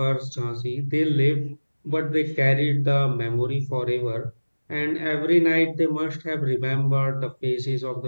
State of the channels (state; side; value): inverted; both; correlation -1.00